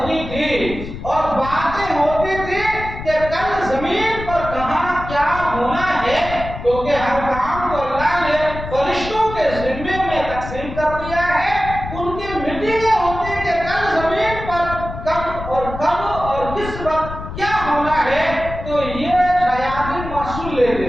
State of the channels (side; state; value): left; noise; rumble, 10 dB below the sound